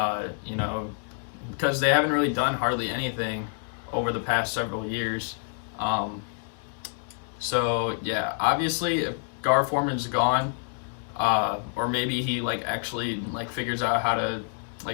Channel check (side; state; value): right; silent; 60 dB below the other